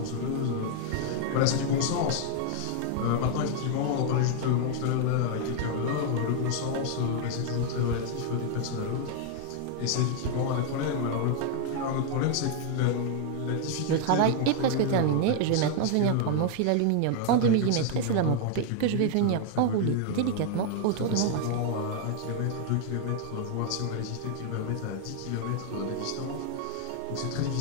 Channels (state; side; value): different; both; correlation 0.00